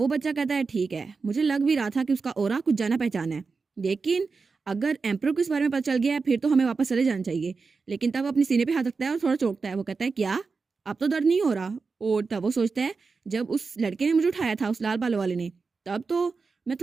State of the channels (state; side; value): quieter; left; 4.6 dB